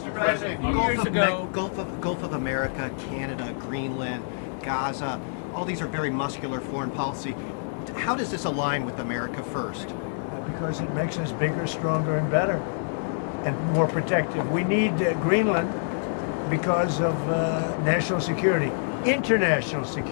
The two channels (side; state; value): right; silent; digital silence